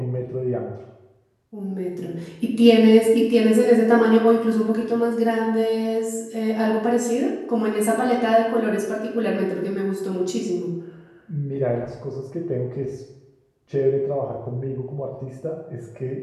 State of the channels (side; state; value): both; identical; correlation 1.00